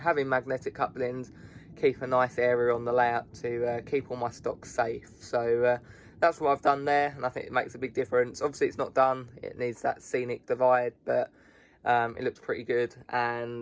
magnetic couplings, keep a nice area on the layout to keep all my stock safe. So that's what I've done there, and I think it makes a big difference. Obviously it's not done, it needs that scenic divide, but it looks pretty good.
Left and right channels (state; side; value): identical; both; correlation 1.00